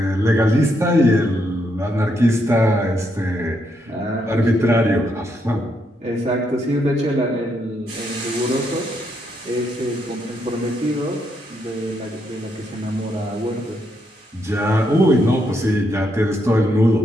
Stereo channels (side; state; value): both; normal; correlation 0.78